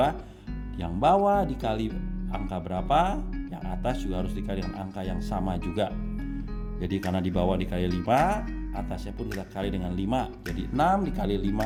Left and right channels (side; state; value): both; identical; correlation 1.00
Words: yang bawah dikali angka berapa, yang atas juga harus dikali dengan angka yang sama juga. Jadi karena di bawah dikali 5, atasnya pun kita kali dengan 5. Jadi 6 dikali